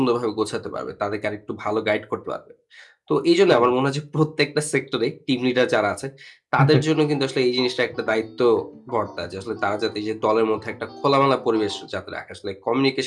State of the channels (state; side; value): identical; both; correlation 1.00